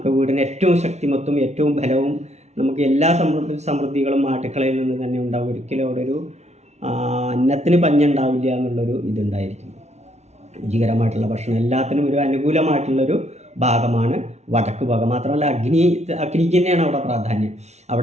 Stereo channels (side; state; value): left; late; 0.32 ms